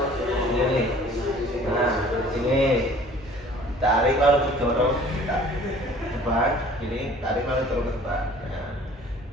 Nah ini tarik lalu didorong ke depan, ini tarik lalu dorong ke depan. Nah.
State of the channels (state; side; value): normal; both; correlation 0.51